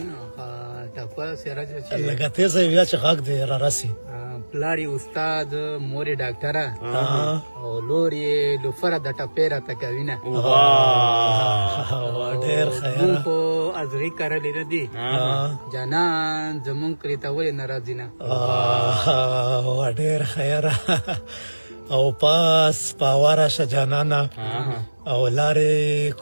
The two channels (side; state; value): both; inverted; correlation -1.00